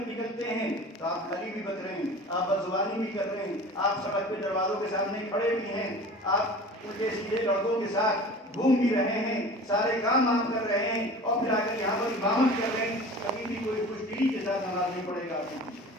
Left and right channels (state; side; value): normal; both; correlation 0.39